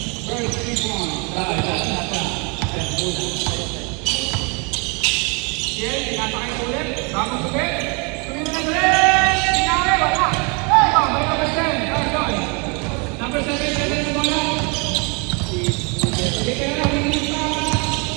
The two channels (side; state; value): left; quieter; 32.7 dB